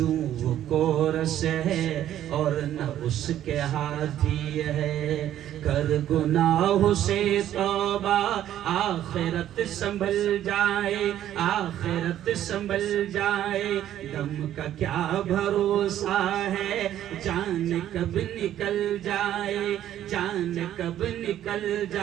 وہ کورس ہے اور نہ اس کے ہاتھی ہے. کر گناہ سے توبہ آخرت سنبھل جائے, آخرت سنبھل جائے. دم کا کیا بھروسہ ہے, جان کب نکل جائے, جان کب نکل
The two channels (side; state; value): left; quieter; 11.7 dB